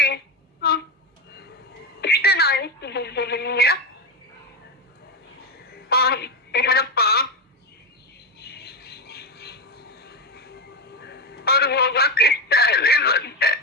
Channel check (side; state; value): both; normal; correlation 0.12